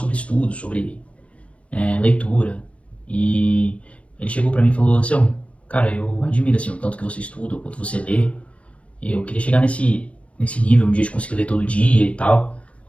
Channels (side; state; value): right; late; 0.063 ms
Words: estudo, sobre leitura, e ele chegou pra mim e falou assim: cara, eu admiro assim, o tanto que você estuda, o quanto você lê, e eu queria chegar nesse nível um dia de conseguir ler todo dia e tal.